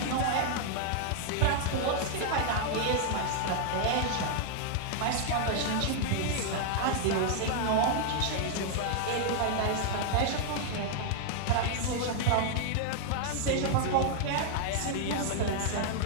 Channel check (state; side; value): different; both; correlation 0.00